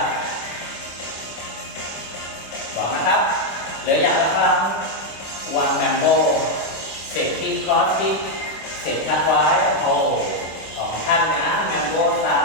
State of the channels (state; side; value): late; right; 25 ms